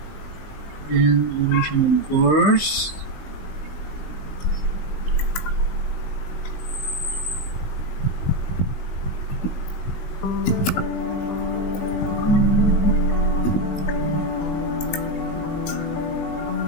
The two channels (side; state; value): right; late; 19 ms